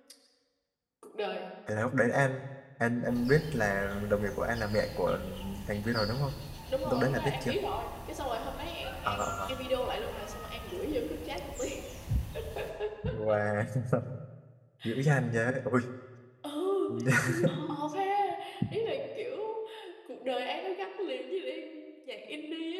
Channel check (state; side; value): identical; both; correlation 1.00